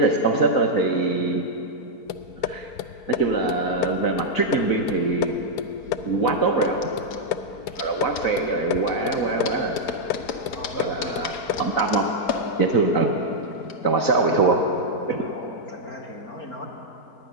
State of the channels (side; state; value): right; late; 4.9 ms